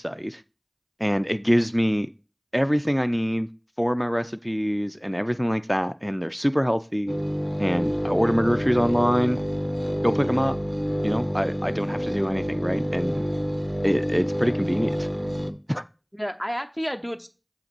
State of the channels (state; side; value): identical; both; correlation 1.00